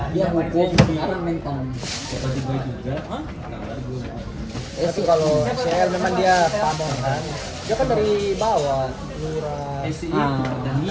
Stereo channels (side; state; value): both; identical; correlation 1.00